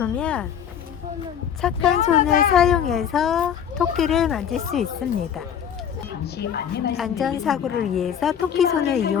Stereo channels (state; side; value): quieter; right; 8.6 dB